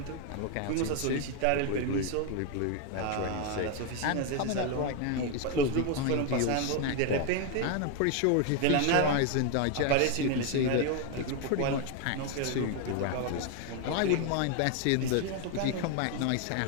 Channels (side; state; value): both; different; correlation 0.01